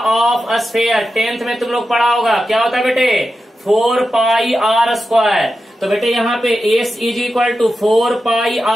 sphere 10th में तुम लोग पढ़ा होगा, क्या होता है बेटे 4 पाई r स्क्वायर। तो बेटे यहाँ पे s is equal to 4 pi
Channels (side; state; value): both; normal; correlation 0.91